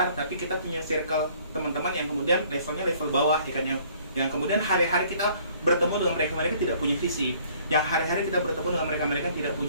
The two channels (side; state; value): both; inverted; correlation -0.58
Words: tapi kita punya circle teman-teman yang kemudian levelnya level bawah, ya kan? Yang kemudian hari-hari kita bertemu dengan mereka tidak punya visi, yang hari-hari kita bertemu dengan mereka tidak